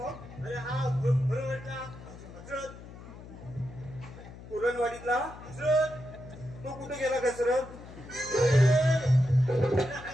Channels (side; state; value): left; noise; hum, 16 dB below the sound